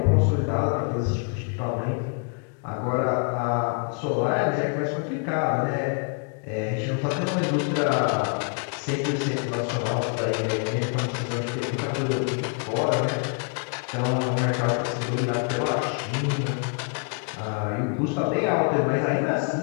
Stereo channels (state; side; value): quieter; right; 39.8 dB